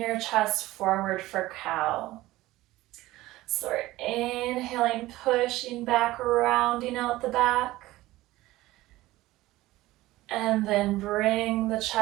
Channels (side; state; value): left; quieter; 17.4 dB